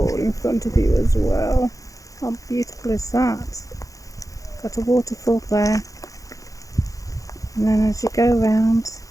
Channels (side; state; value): right; late; 0.16 ms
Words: in front of you as well. How beautiful is that? Got a waterfall there, and then as you go around,